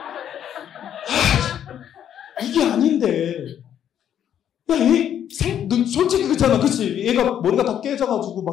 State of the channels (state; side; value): quieter; right; 9.8 dB